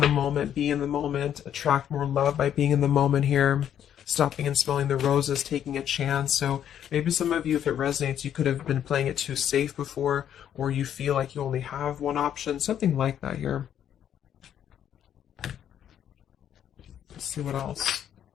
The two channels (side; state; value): right; quieter; 9.9 dB